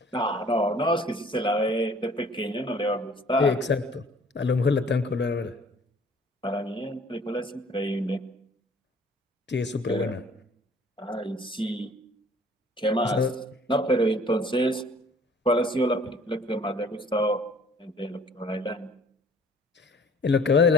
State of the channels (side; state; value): both; normal; correlation 0.54